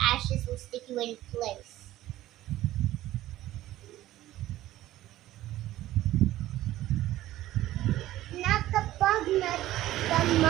ashes will stick you in place. Na kapag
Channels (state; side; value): quieter; left; 14.9 dB